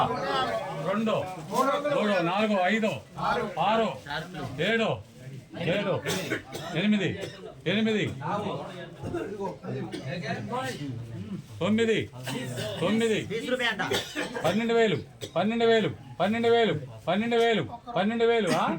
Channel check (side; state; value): both; identical; correlation 1.00